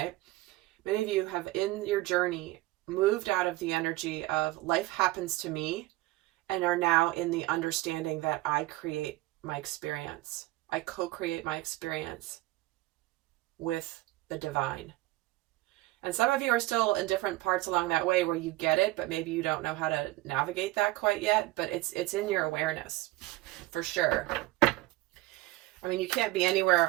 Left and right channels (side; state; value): left; quieter; 18.4 dB